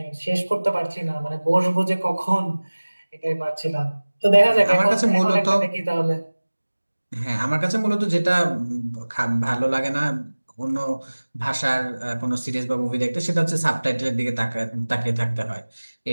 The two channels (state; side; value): inverted; both; correlation -1.00